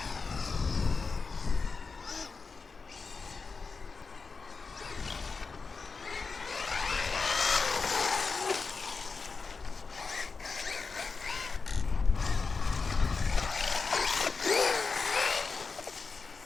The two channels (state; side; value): quieter; right; 4.6 dB